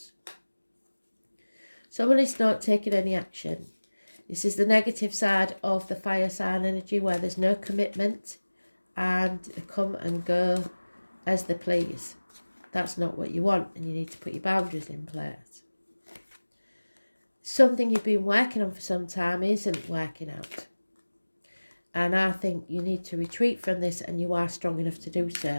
Someone is not taking any action. This is the negative side of the fire sign energy, where there's no commitment and they come and go as they please. That's not what you want, and you need to put your boundaries in place. Something you've been working on for some time isn't working out. And I think you need to retreat from this, and you are strong enough to do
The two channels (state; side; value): inverted; both; correlation -1.00